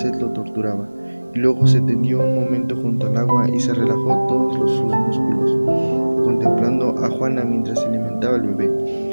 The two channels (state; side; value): inverted; both; correlation -1.00